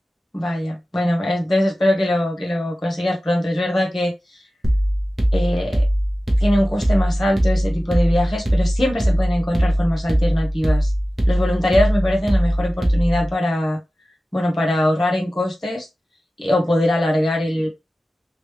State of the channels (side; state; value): both; normal; correlation 0.96